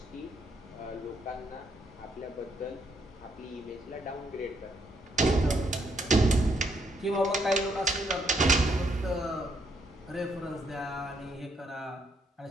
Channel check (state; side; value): normal; both; correlation 0.73